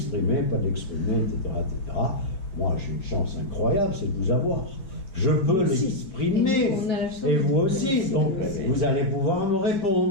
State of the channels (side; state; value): right; late; 5.2 ms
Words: pas de l'exprimer, etc., etc. Moi, j'ai une chance incroyable, c'est de vous avoir. Je peux l'exprimer, et vous aussi. Donc, vous allez pouvoir me